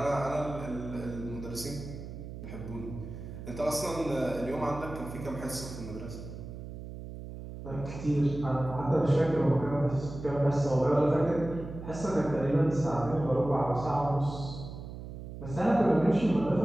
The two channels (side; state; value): right; noise; hum, 10 dB below the sound